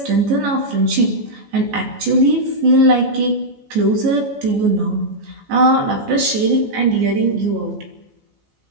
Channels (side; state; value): left; late; 14 ms